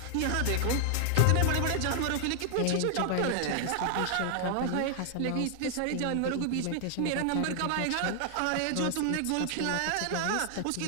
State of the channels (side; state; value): both; different; correlation 0.00